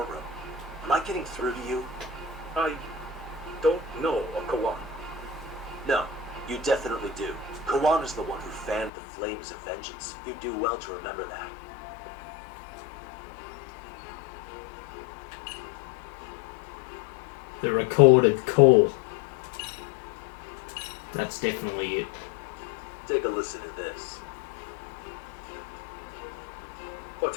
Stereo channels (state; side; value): drops out; right; at 8.9 s